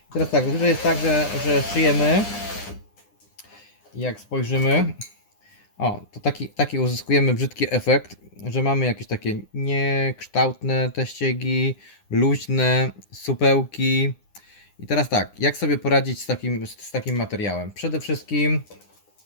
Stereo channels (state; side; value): late; right; 9.9 ms